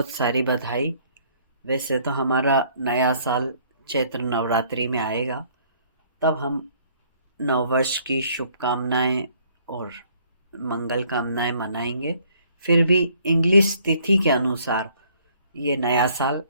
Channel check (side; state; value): both; inverted; correlation -0.62